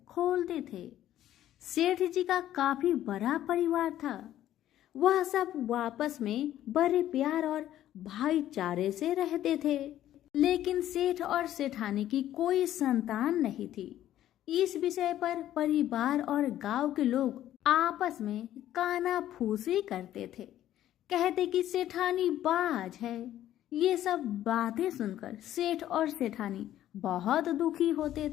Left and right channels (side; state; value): right; quieter; 12.5 dB